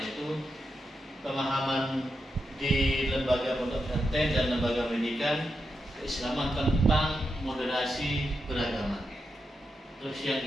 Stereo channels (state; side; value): normal; both; correlation 0.86